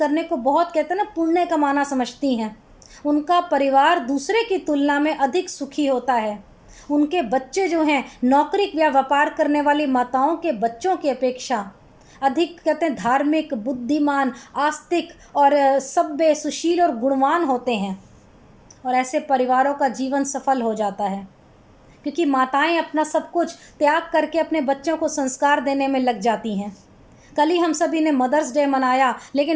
को बहुत, कहते हैं ना, पुण्य कमाना समझती हैं। उनका परिवार दूसरे की तुलना में अधिक सुखी होता है। उनके बच्चे जो हैं, नौकरी या व्यापार करने वाली माताओं के बच्चों की अपेक्षा अधिक कहते हैं धार्मिक, बुद्धिमान, आस्तिक और सभ्य, सुशील और गुणवान होते हैं। और ऐसे परिवारों का जीवन सफल हो जाता है, क्योंकि माताएं अपना सब कुछ त्याग करके अपने बच्चों को संस्कार देने में लग जाती हैं। कल ही हम सभी ने मदर्स डे मनाया,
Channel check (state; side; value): identical; both; correlation 1.00